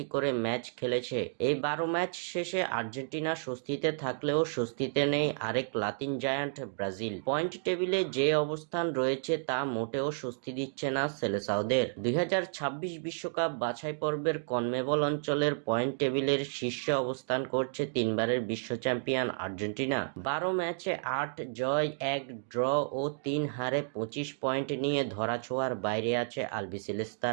করে ম্যাচ খেলেছে। এই 12 ম্যাচ শেষে আর্জেন্টিনা স্বস্তিতে থাকলেও স্বস্তিতে নেই আরেক লাতিন জায়ান্ট ব্রাজিল। পয়েন্ট টেবিলে যে অবস্থান রয়েছে তা মোটেও স্বস্তি দিচ্ছে না সেলেসাওদের। 2026 বিশ্বকাপ বাছাই পর্বের কনমেবল অঞ্চলের পয়েন্ট টেবিলের শীর্ষে অবস্থান করছে তিনবারের বিশ্ব চ্যাম্পিয়ন আর্জেন্টিনা। 12 ম্যাচে 8 জয়, 1 ড্র ও 3 হারে 25 পয়েন্ট নিয়ে ধরাছোঁয়ার বাইরে আছে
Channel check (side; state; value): left; silent; digital silence